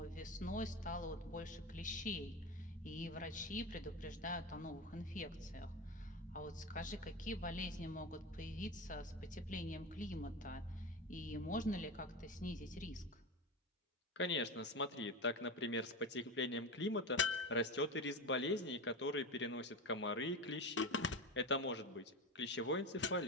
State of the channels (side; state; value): both; normal; correlation 0.22